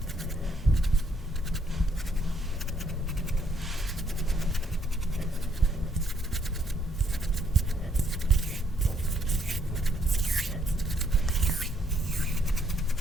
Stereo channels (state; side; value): normal; both; correlation 0.70